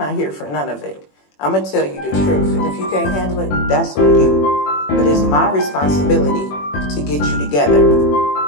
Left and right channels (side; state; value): right; late; 21 ms